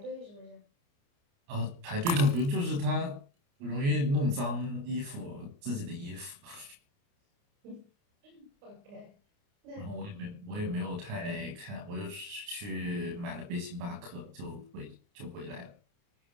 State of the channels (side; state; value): left; late; 29 ms